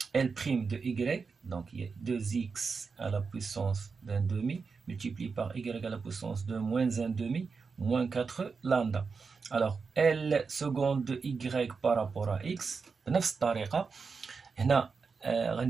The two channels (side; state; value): left; quieter; 5.0 dB